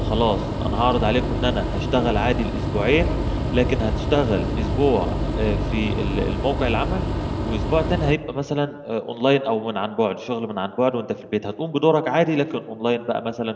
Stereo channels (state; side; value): identical; both; correlation 1.00